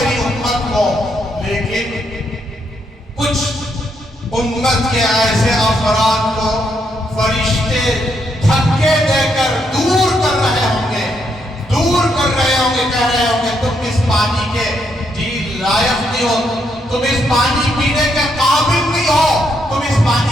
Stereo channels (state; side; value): normal; both; correlation 0.77